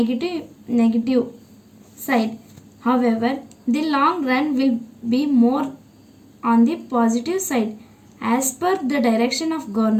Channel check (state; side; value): identical; both; correlation 1.00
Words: negative side. However, the long run will be more on the positive side. As per the direction of